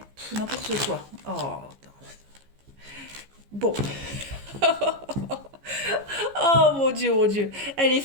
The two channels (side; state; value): left; late; 15 ms